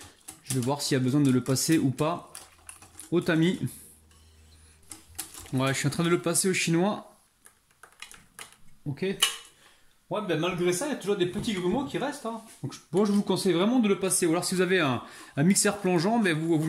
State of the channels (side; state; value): both; identical; correlation 1.00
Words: Je vais voir s'il y a besoin de le passer ou pas au tamis. Ouais, je suis en train de le passer au chinois. Ok. Ouais, ben malgré ça, il y a toujours des petits grumeaux qui restent. Hein. Donc, bon, je vous conseille vraiment de le passer. Ou alors, si vous avez un mixeur plongeant, ben vous